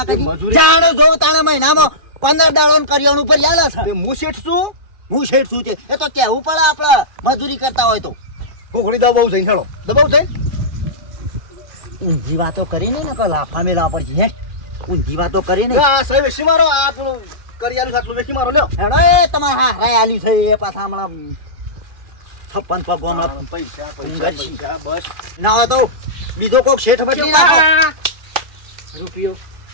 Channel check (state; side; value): late; left; 2.4 ms